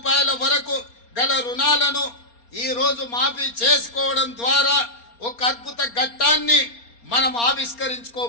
వరకు గల రుణాలను ఈరోజు మాఫీ చేసుకోవడం ద్వారా ఒక అద్భుత ఘట్టాన్ని మనం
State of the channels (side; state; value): right; late; 4.3 ms